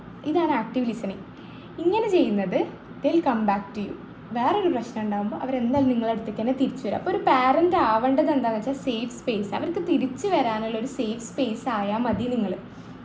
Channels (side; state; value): both; identical; correlation 1.00